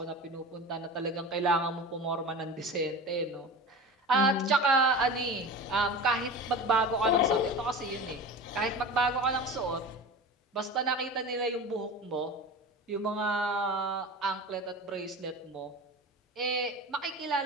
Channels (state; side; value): normal; both; correlation 0.31